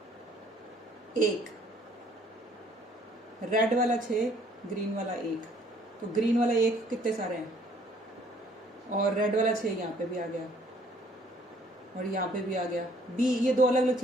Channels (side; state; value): both; normal; correlation 0.60